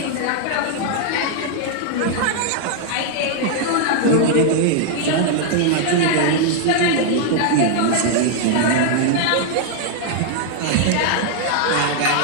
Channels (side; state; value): both; different; correlation 0.00